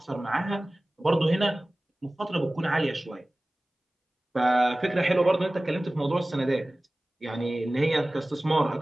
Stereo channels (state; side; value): normal; both; correlation 0.98